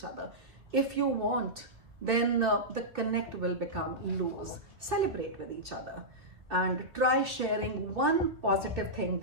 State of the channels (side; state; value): left; late; 2.8 ms